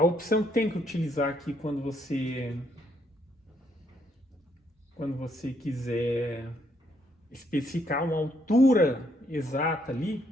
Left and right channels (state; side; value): normal; both; correlation 0.72